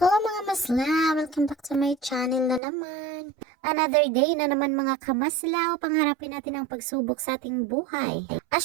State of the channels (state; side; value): drops out; left; at 2.6 s